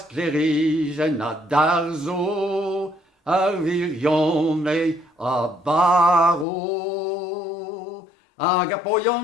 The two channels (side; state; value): right; drops out; at 6.5 s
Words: a darzo, ar virion a baro. Hag a